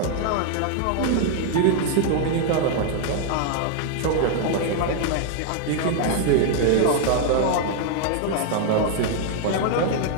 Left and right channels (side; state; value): both; different; correlation 0.00